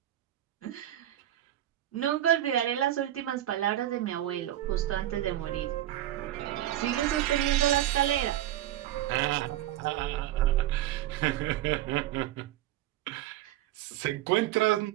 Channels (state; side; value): quieter; left; 13.5 dB